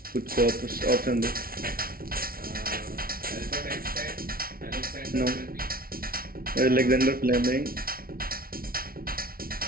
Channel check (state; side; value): late; left; 0.43 ms